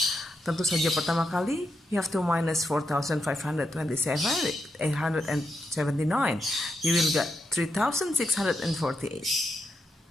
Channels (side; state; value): both; normal; correlation 0.84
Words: tentu saja pertama kali you have to minus 4,527 879. You will get